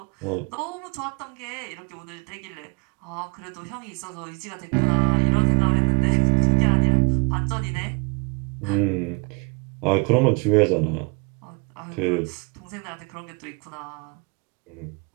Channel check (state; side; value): quieter; left; 33.1 dB